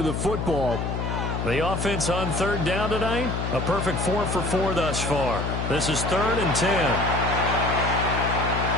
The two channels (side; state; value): left; noise; hum, 2 dB below the sound